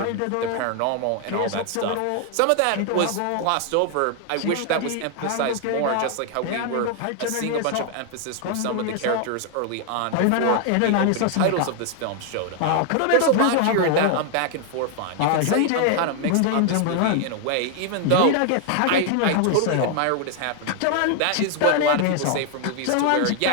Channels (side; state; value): both; different; correlation 0.00